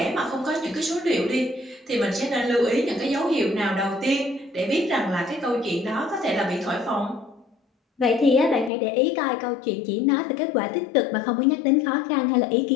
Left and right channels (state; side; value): drops out; right; at 8.7 s